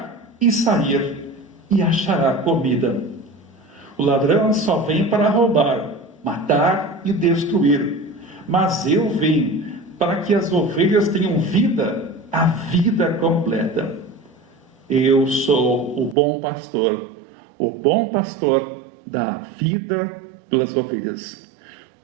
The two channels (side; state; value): left; drops out; at 16.2 s